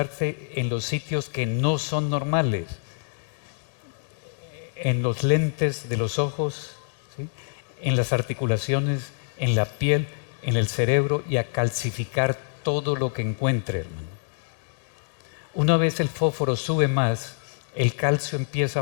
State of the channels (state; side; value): silent; right; digital silence